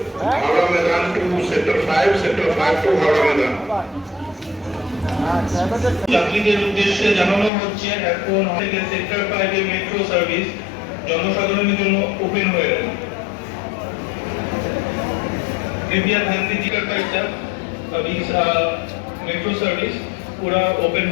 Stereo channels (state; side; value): drops out; right; at 7.5 s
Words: हावड़ा मैदान टू सेक्टर 5 टू हावड़ा मैदान। যাত্রীদের উদ্দেশ্যে জানানো হচ্ছে এখন থেকে সেক্টর 5 এর মেট্রো সার্ভিস জনসাধারণের জন্য ওপেন হয়ে গেছে। कृपया ध्यान दीजिएगा का अभी मेट्रो सर्विस पूरा ओपन